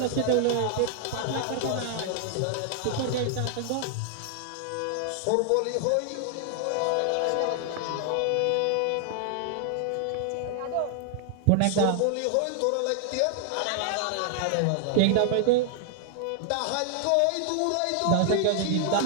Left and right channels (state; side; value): different; both; correlation 0.00